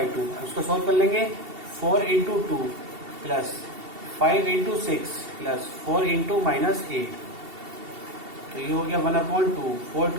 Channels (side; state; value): left; late; 2.7 ms